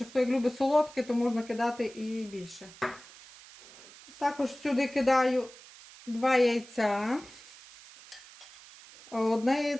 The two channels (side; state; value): right; noise; hiss, 20 dB below the sound